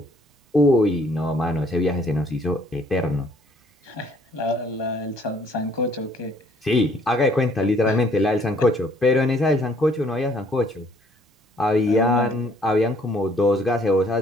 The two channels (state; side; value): normal; both; correlation 0.62